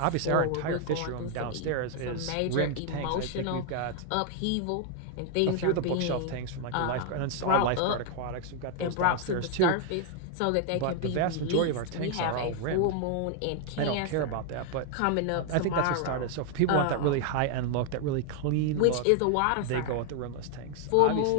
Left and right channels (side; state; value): both; different; correlation 0.00